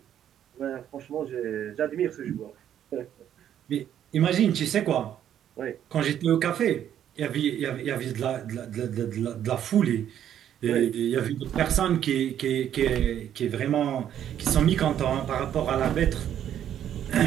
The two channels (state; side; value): quieter; left; 10.2 dB